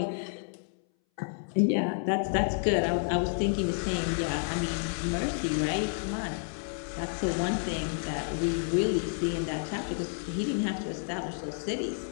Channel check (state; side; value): silent; right; 58 dB below the other